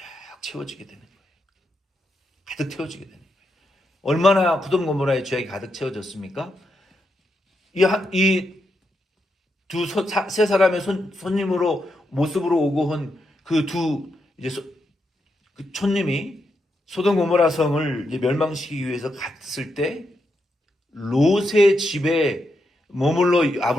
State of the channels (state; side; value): normal; both; correlation 0.83